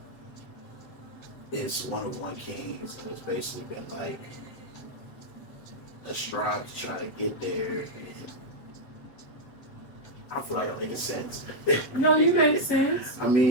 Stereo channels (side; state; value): right; late; 7.9 ms